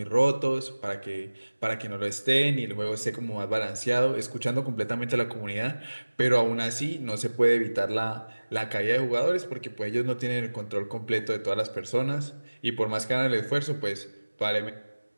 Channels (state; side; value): inverted; both; correlation -1.00